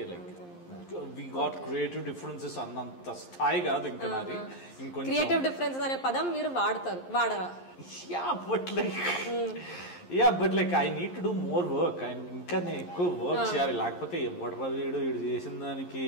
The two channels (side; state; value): right; late; 11 ms